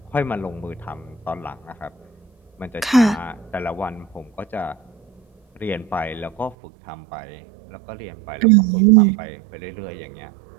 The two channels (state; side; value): drops out; left; at 6.6 s